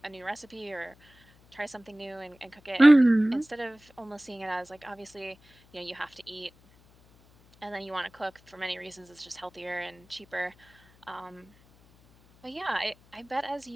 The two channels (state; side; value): noise; left; hum, 28 dB below the sound